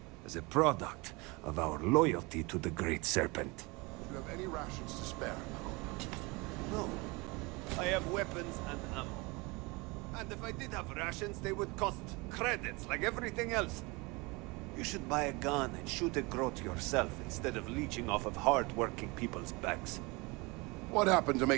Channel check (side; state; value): left; quieter; 26.0 dB